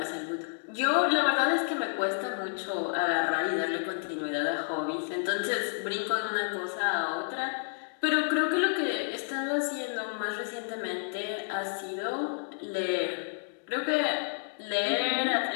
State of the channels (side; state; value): right; silent; digital silence